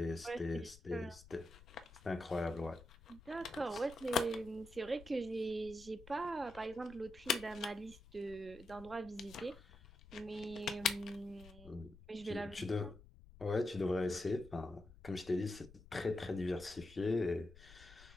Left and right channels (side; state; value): left; noise; rumble, 20 dB below the sound